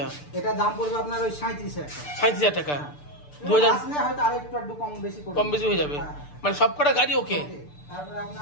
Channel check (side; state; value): right; late; 6.8 ms